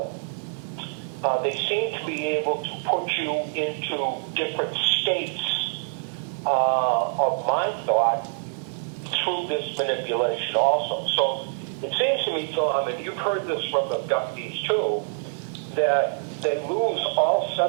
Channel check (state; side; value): silent; left; 59 dB below the other